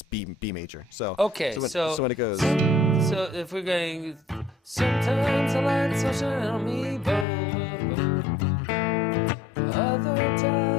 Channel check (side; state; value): right; drops out; at 7.2 s